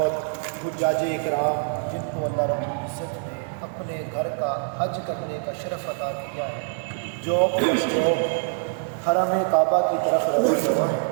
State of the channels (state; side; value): silent; left; digital silence